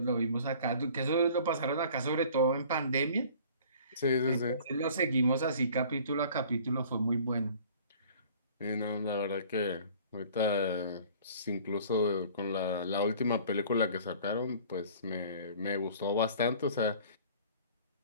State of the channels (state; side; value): inverted; both; correlation -0.49